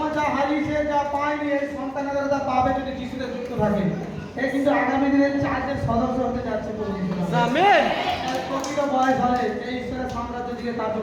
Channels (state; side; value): identical; both; correlation 1.00